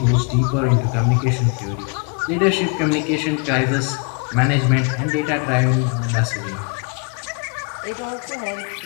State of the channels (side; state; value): right; quieter; 37.0 dB